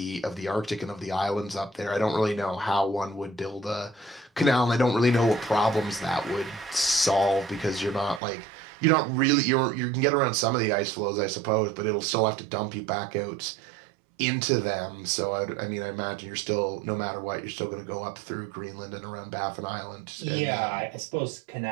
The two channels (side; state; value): left; drops out; at 8.2 s